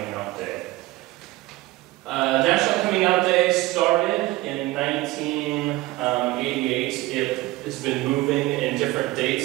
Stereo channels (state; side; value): quieter; left; 19.0 dB